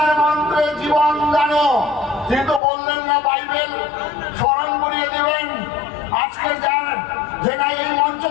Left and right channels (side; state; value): right; drops out; at 2.6 s